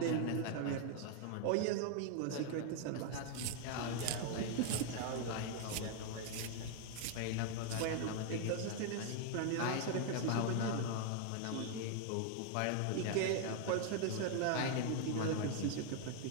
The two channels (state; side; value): different; both; correlation 0.00